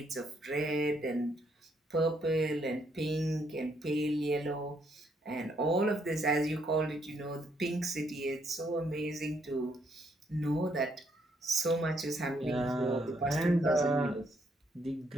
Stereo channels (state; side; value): normal; both; correlation 0.72